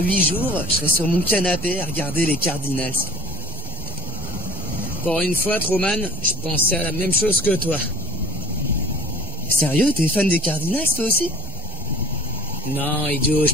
jours, je serai sur mon canapé à regarder les Cardinals. Pour une fois, Truman, je pensais à la même chose que toi. Sérieux, t'es fan des Cardinals, toi aussi? Non, idiot, je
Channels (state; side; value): normal; both; correlation 0.46